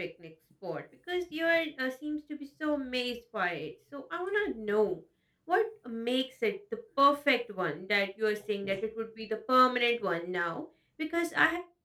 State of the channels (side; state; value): both; identical; correlation 1.00